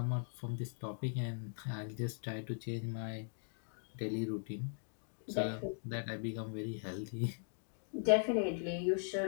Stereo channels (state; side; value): silent; right; digital silence